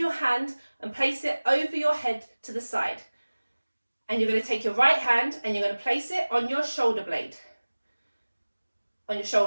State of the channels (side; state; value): both; inverted; correlation -1.00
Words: hand and place it over your head to the side. And you're going to take your right hand and you're going to place it on your shoulder blade. On your